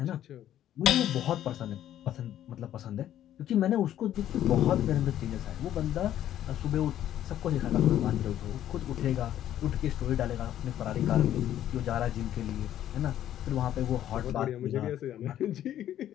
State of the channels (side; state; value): right; quieter; 11.7 dB